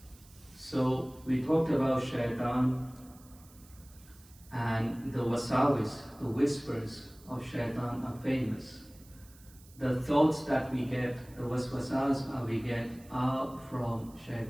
So we talked about shaitan and the wasawis, the whispers of shaitan are famous. The thoughts that we get, the waswasas we get are from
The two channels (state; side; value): noise; right; hiss, 24 dB below the sound